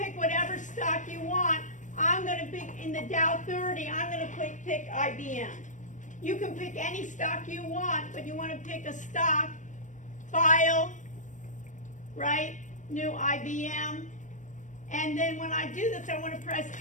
whatever stock you want. I'm going to pick in the Dow 30, I'm going to pick IBM. You can pick any stock you want, but you want to pick a stock, File, right, New IBM. And then when I do this, I want to press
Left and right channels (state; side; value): late; right; 0.37 ms